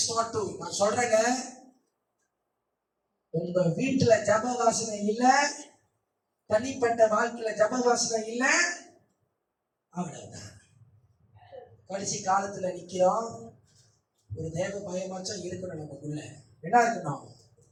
4:2. நான் சொல்றேங்க, உங்க வீட்டுல ஜப வாசனை இல்ல, தனிப்பட்ட வாழ்க்கையில ஜப வாசனை இல்ல, அவ்வளவுதான். கடைசி காலத்துல நிக்கிறோம். ஒரு தேவ பயமாச்சும் இருக்கணும் நமக்குள்ள. என்ன இருக்கணும்?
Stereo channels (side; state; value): both; identical; correlation 1.00